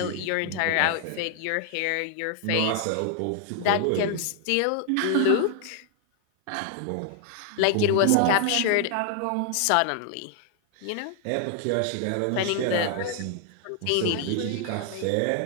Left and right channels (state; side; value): different; both; correlation 0.00